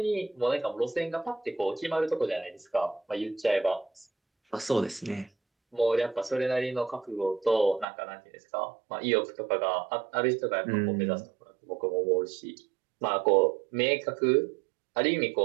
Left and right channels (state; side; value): drops out; left; at 7.9 s